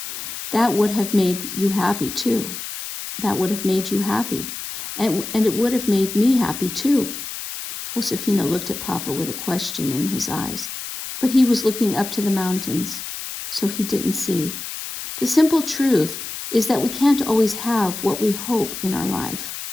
That would have made you happy, too. That would have made you happy. And it would have made me happy, too." Josefina looked at Papa with a question in his eyes, but he was looking up to the mountains, so he didn't see. The simple truth is that we can't always have what we hope in our life.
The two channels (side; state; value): left; noise; hiss, 8 dB below the sound